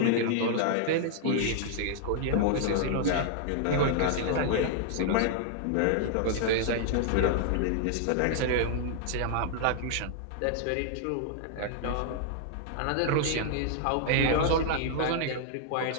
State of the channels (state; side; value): different; both; correlation -0.01